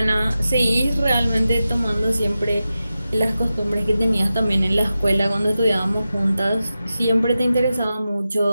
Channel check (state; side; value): inverted; both; correlation -0.92